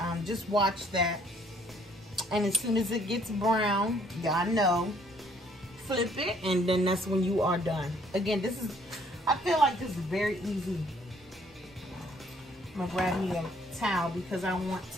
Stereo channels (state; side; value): normal; both; correlation 0.63